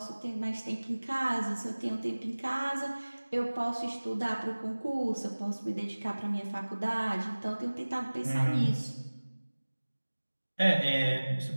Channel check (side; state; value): both; inverted; correlation -1.00